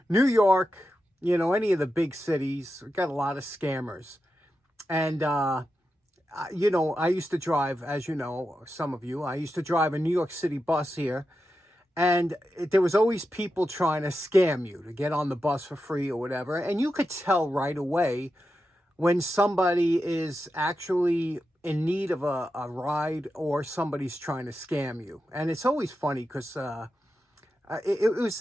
New York, any of the big cities, we've got a lot of scammers. And, I used to drive, as you know, some of you, I used to drive a New York City bus here. And there was always people trying to scam you to get on the bus for free or whatever. And you could tell right away when somebody is actually in need of a ride or somebody's trying to scam you. And it's always funny because it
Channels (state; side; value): normal; both; correlation 0.89